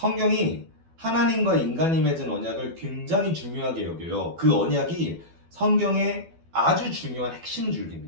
하나님과 인간이 맺은 언약을 굉장히 중요하게 여겨요. 그 언약이 성경의 아주 중요한 핵심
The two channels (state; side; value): late; left; 12 ms